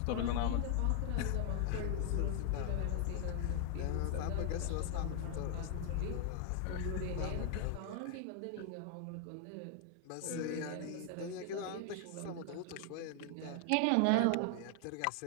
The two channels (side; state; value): both; different; correlation 0.00